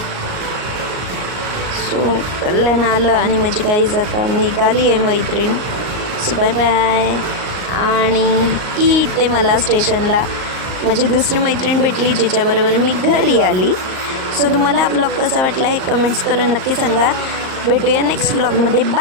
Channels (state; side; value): late; left; 38 ms